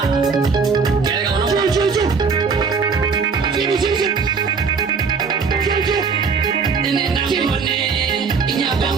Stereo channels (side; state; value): left; quieter; 5.3 dB